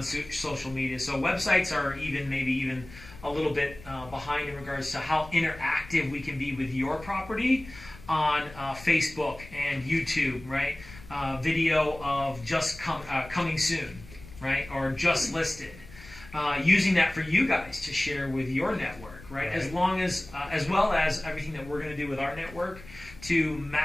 social media. So websites are maybe even a little bit behind in regards to how interactive we can be with your property on Facebook and YouTube, right? Video of just coming soon, right? Or just listed. Using that for you guys to share with your network, right? As well as everything that we're going to do with our network to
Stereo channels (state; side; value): noise; left; rumble, 18 dB below the sound